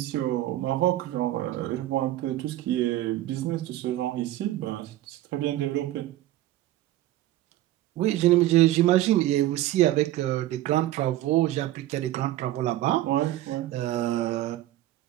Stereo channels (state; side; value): quieter; left; 14.8 dB